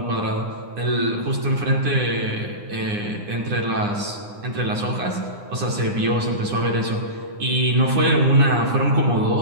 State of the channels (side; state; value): left; late; 9.8 ms